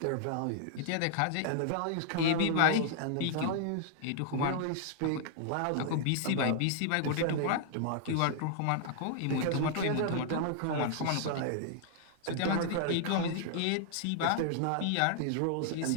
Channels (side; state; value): both; different; correlation -0.01